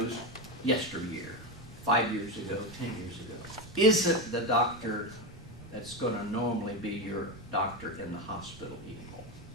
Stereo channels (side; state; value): right; noise; rumble, 18 dB below the sound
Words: yesteryear, 5 years ago, 10 years ago, isn't the doctor that's going to normally be your doctor in the hospital anymore.